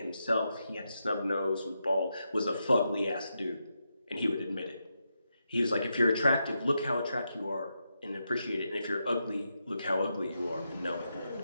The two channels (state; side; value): inverted; both; correlation -0.85